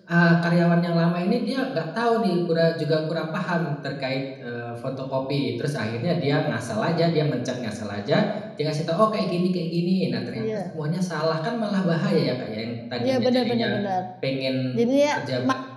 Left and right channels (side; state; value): both; identical; correlation 1.00